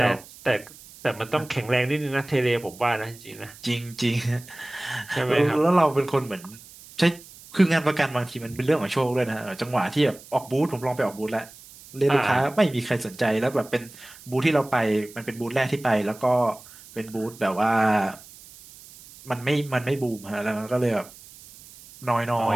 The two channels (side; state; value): right; noise; hiss, 20 dB below the sound